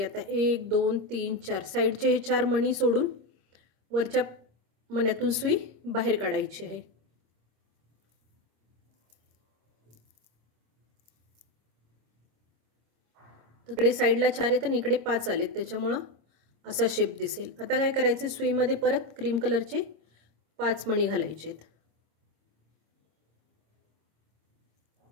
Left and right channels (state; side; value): late; left; 26 ms